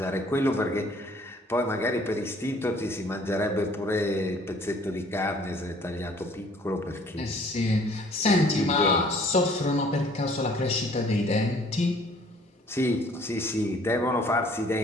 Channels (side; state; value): both; normal; correlation 0.56